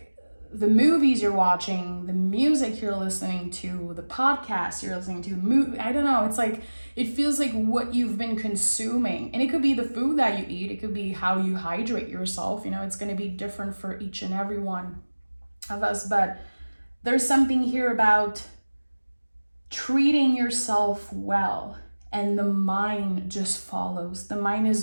the movies you're watching, the music you're listening to, the podcasts you're listening to, I don't know. It's like, it feels like what you've been consuming, and it could be the food that you eat. It could be how you hydrate yourself. You know, it's going to be different for each and every one of us, but there's something here about treating yourself well, and the mind just follows. The mind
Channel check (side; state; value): both; inverted; correlation -1.00